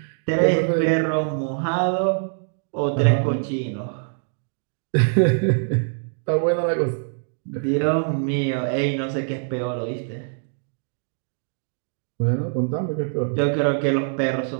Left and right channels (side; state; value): left; silent; digital silence